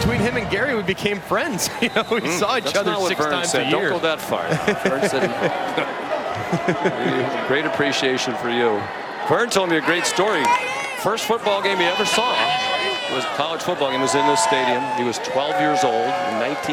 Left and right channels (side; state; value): both; identical; correlation 1.00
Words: him and Gary, we became friends. You know, we saw each other 6 times a year. Don't go that far. Vern said, great appreciation for you. Vern told me a great story. First football game he ever saw was a college football game. It was in this stadium. He was 12 years old in